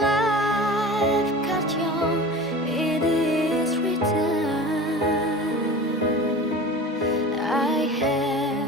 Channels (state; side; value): normal; both; correlation 0.36